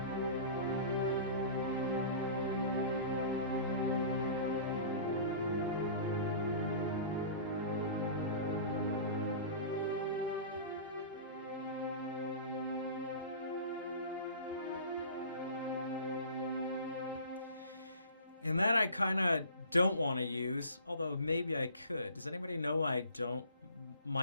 And that I kind of don't want to use, although maybe I could. Does anybody know I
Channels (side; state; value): both; inverted; correlation -0.41